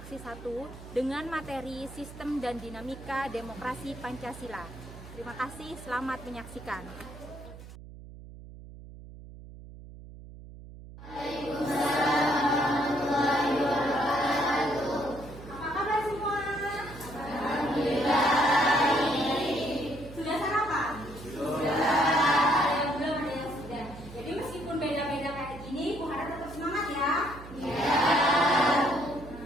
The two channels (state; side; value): noise; right; hum, 16 dB below the sound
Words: 1 dengan materi Sistem dan Dinamika Demokrasi Pancasila. Terima kasih, selamat menyaksikan.